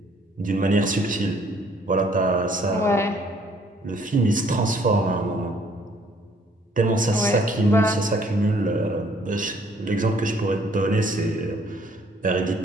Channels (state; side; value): normal; both; correlation 0.62